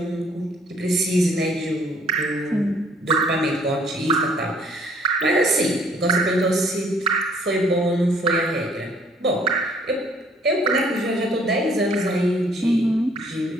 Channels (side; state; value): both; normal; correlation 0.61